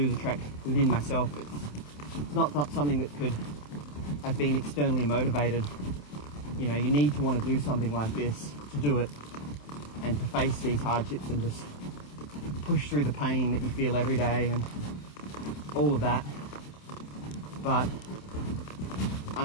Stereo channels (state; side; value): late; right; 27 ms